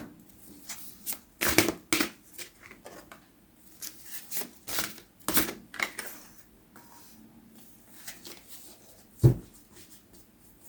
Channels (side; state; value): both; identical; correlation 1.00